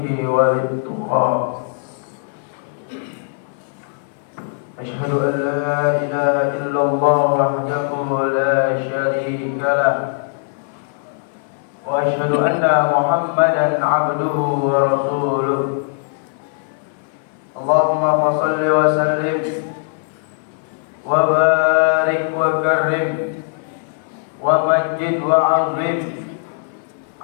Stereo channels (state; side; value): silent; right; 57 dB below the other